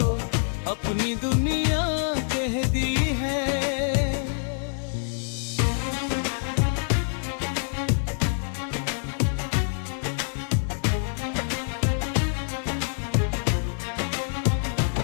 अपनी दुनिया कह दी है।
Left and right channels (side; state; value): right; silent; digital silence